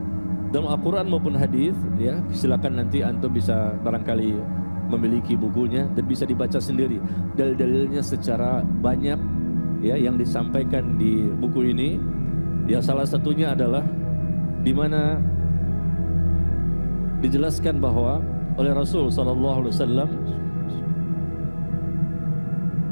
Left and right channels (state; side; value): inverted; both; correlation -1.00